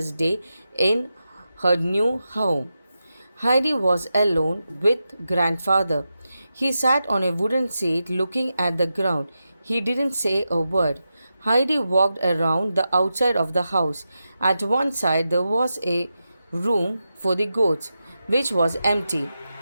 day in her new home. Heidi was alone with grandfather. He sat on a wooden seat looking at the ground. He didn't say a word. Heidi walked around the outside of the house. At one side there was a room for the goats, which was empty.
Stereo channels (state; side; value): inverted; both; correlation -0.89